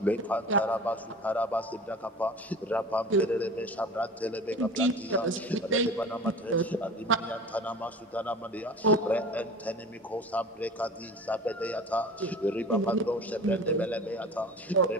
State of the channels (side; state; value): both; normal; correlation 0.38